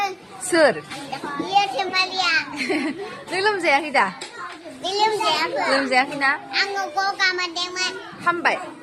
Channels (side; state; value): both; identical; correlation 1.00